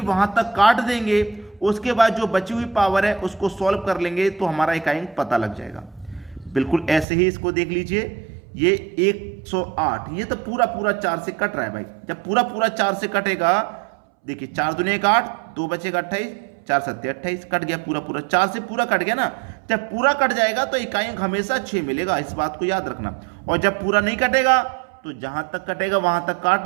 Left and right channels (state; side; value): drops out; left; at 7.1 s